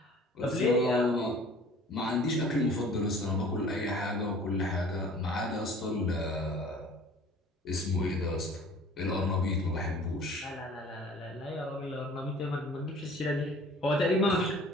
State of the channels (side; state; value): both; normal; correlation 0.48